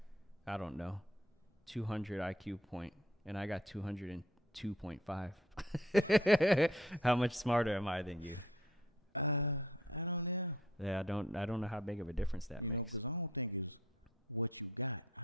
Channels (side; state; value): both; normal; correlation 0.59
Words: I don't know, 200 IQ point and I got 202.5, how much smarter am I than you? Yeah, I don't know how big of a difference that makes.